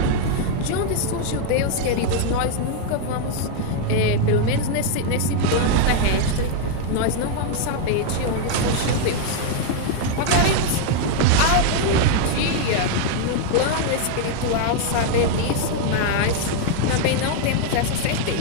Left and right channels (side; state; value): both; different; correlation 0.00